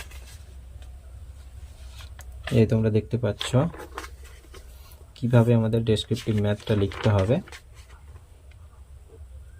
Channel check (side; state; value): both; identical; correlation 1.00